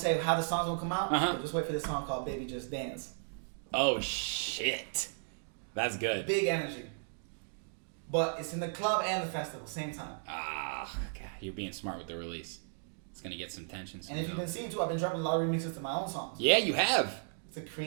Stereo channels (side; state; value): left; silent; digital silence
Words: how the song's going to come out, but just wait for this song called Baby Just Dance. Oh, shit. That's good. Big energy. But it's in the club and the festival, same time. Ah, God, you're being smart with the release. It's going to get some tension. And if you've been seeing too, I've been dropping a lot of remixes to my own songs. Yeah, you have. To